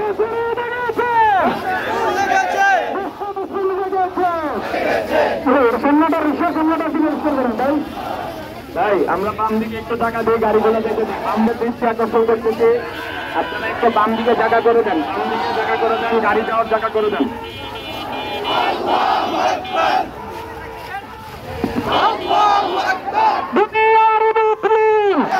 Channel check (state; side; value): identical; both; correlation 1.00